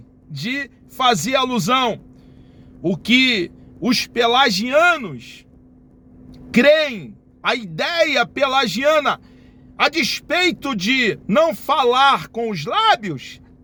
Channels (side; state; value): both; identical; correlation 1.00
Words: de fazer alusão, o que os pelagianos creem, a ideia pelagiana, a despeito de não falar com os lábios,